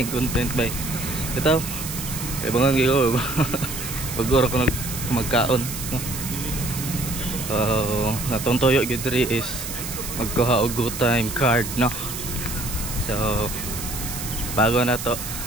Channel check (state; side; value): noise; right; hiss, 7 dB below the sound